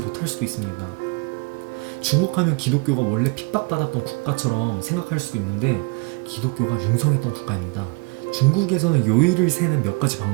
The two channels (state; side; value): quieter; left; 28.6 dB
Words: 수도 있습니다. 중국 하면 기독교가 원래 핍박받았던 국가처럼 생각할 수도 있는데 기독교가 융성했던 국가입니다. 중국에서는 요일을 세는 몇 가지